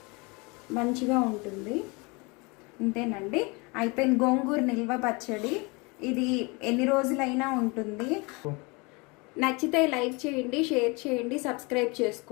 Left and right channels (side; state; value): right; quieter; 27.9 dB